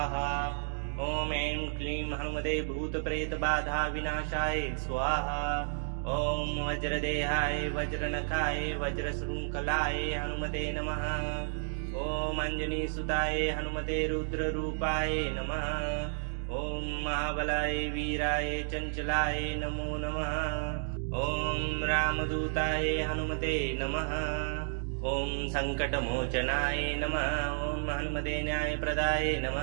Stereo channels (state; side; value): silent; left; digital silence